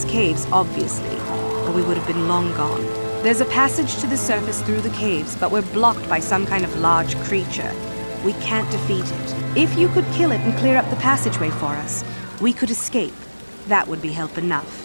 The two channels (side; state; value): both; inverted; correlation -1.00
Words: caves, obviously, or we would have been long gone. There's a passage to the surface through the caves, but we're blocked by some kind of large creature. We can't defeat it. If you could kill it and clear up the passageway for us, we could escape. That would be help